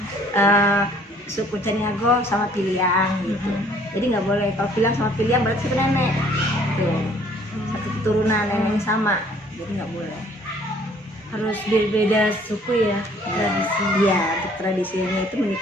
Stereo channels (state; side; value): normal; both; correlation 0.58